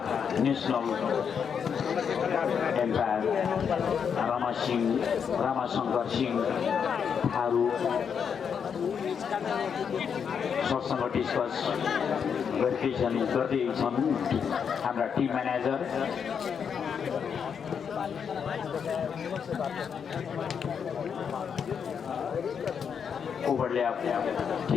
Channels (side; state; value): right; quieter; 7.0 dB